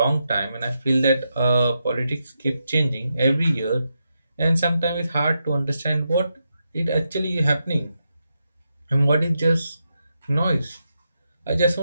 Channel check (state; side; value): inverted; both; correlation -0.85